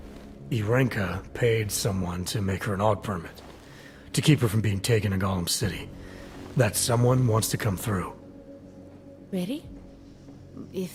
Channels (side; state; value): both; identical; correlation 1.00